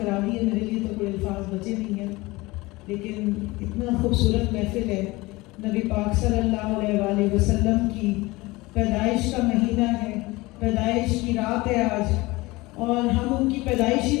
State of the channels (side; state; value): right; quieter; 21.7 dB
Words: دی ہے، میرے لیے تو کوئی الفاظ بچے نہیں ہیں، لیکن اتنا خوبصورت محفل ہے۔ نبی پاک صلی اللہ علیہ وآلہ وسلم کی پیدائش کا مہینہ ہے، پیدائش کی رات ہے آج، اور ہم ان کی پیدائش ہی